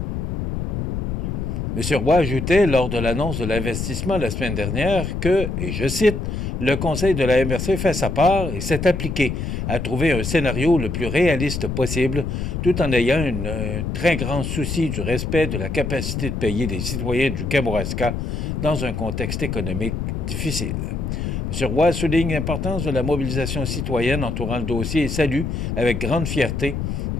M. Roy ajoutait lors de l'annonce de l'investissement la semaine dernière que, et je cite, « Le conseil de la MRC fait sa part et s'est appliqué à trouver un scénario le plus réaliste possible tout en ayant un très grand souci du respect de la capacité de payer des citoyens du Kamouraska dans un contexte économique difficile. » M. Roy souligne l'importance de la mobilisation citoyenne entourant le dossier et salue, avec grande fierté,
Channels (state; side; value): noise; left; rumble, 3 dB below the sound